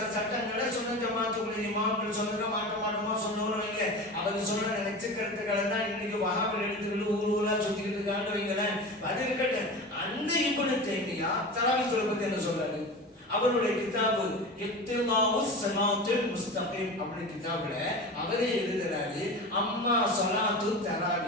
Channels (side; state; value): both; normal; correlation 0.30